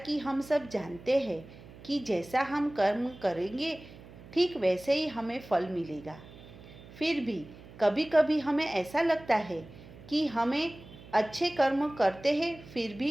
हम सब जानते हैं कि जैसा हम कर्म करेंगे ठीक वैसे ही हमें फल मिलेगा। फिर भी कभी कभी हमें ऐसा लगता है कि हमें अच्छे कर्म करते हैं फिर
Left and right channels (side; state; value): right; noise; hum, 18 dB below the sound